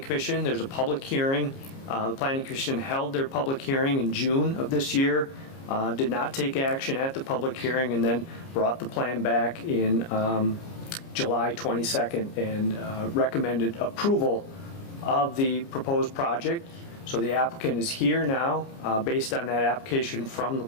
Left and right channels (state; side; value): late; right; 29 ms